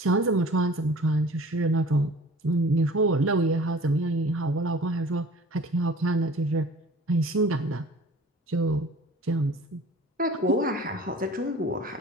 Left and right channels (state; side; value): normal; both; correlation 0.45